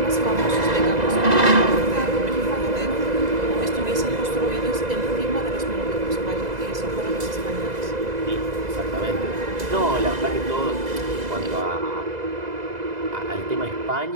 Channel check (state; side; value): late; left; 2.0 ms